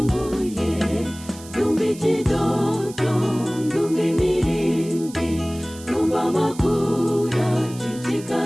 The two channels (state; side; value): noise; right; hiss, 18 dB below the sound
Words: Ndumva ikidodo, ndumva imirindi, ndumva amakuru